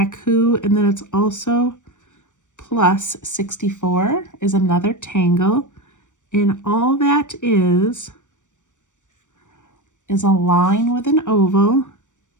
and then it's also plus 64 is another tangle. And all that is a line with an oval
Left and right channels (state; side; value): late; right; 0.85 ms